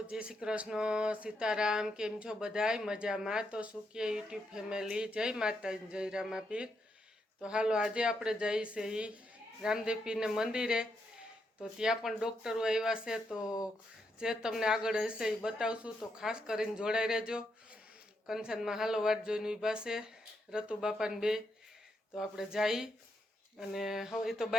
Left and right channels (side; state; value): both; normal; correlation 0.80